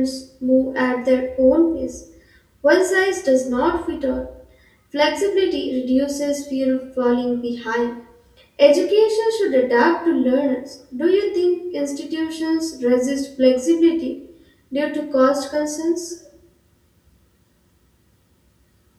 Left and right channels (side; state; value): both; identical; correlation 1.00